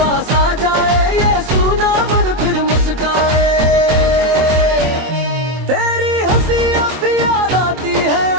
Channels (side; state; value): left; late; 24 ms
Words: आ जाए, ये सूना मन फिर मुस्काए।